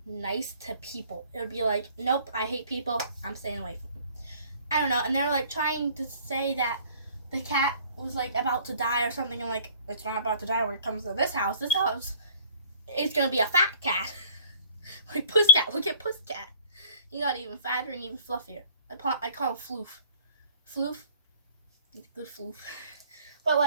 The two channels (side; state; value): both; inverted; correlation -0.52